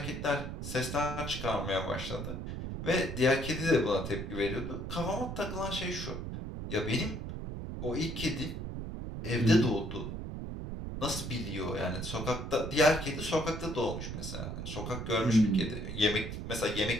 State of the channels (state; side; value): noise; right; rumble, 6 dB below the sound